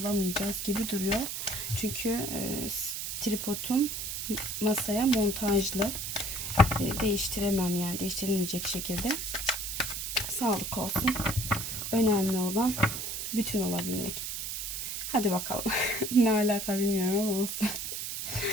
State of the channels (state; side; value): noise; right; hiss, 4 dB below the sound